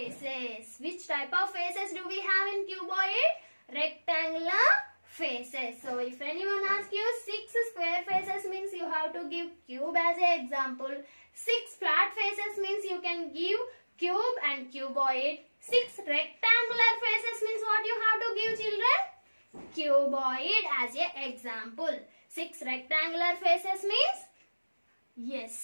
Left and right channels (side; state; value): both; inverted; correlation -1.00